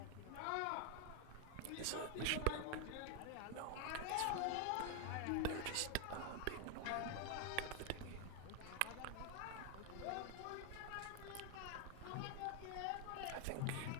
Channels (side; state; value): both; different; correlation 0.01